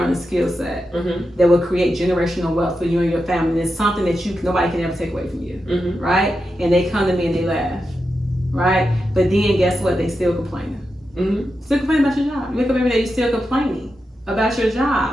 a skill set that will create generational wealth for you and your family. And it's something that nobody can ever take away from you, right? And they come to me and they laugh, right? But then guess what? They still complaining. Still complaining about your job. You wake up every day, you're still complaining about your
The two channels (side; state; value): both; normal; correlation 0.88